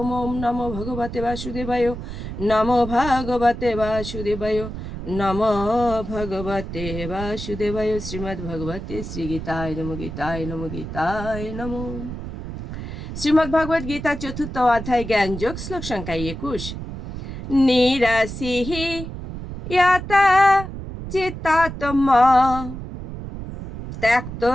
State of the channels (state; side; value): noise; right; rumble, 8 dB below the sound